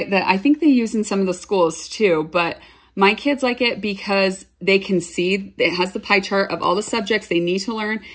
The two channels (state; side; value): identical; both; correlation 1.00